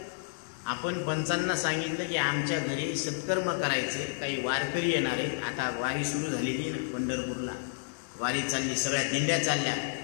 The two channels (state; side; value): silent; right; digital silence